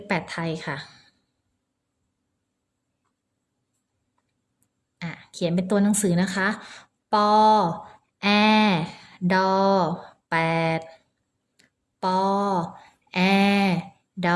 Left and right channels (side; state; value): both; identical; correlation 1.00